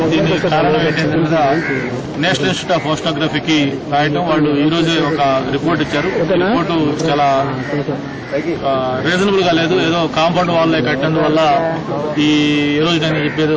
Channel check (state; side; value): identical; both; correlation 1.00